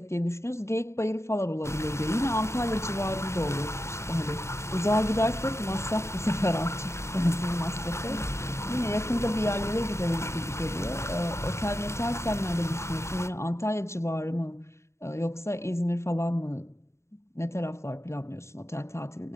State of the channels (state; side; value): late; right; 0.13 ms